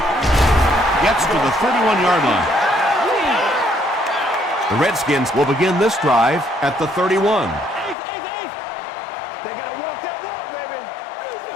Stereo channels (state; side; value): drops out; right; at 8.0 s